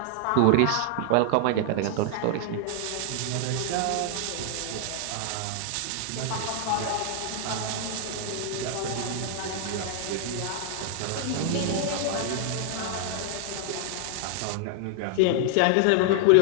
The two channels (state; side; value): different; both; correlation 0.00